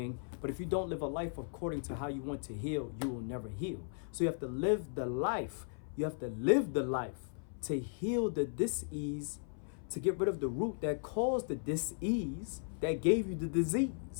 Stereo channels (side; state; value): right; silent; 53 dB below the other